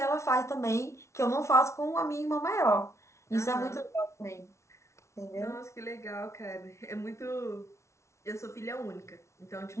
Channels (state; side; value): late; right; 0.13 ms